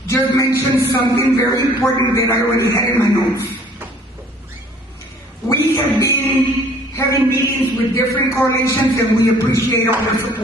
just mentioned something very important that I already had in my notes. We have been having meetings with different coalitions and we appreciate all their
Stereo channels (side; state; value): both; normal; correlation 0.55